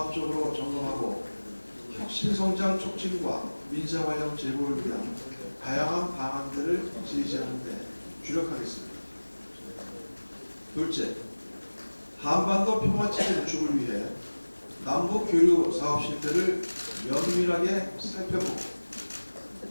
점검하고 혁신성장 촉진과 민생활력 제고를 위한 다양한 방안들을 제시하는 데 주력하겠습니다. 둘째, 한반도 평화체제 구축을 위해 남북 교류 사업 실태를 면밀하게 살펴보고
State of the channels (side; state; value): both; inverted; correlation -1.00